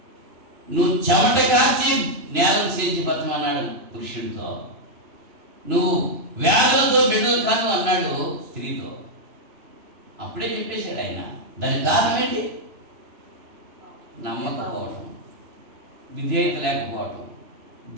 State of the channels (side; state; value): left; late; 3.0 ms